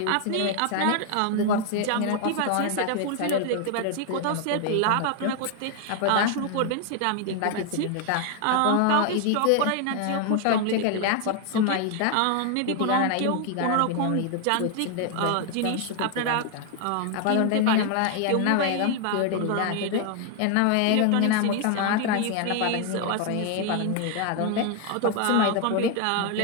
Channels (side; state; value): both; different; correlation 0.01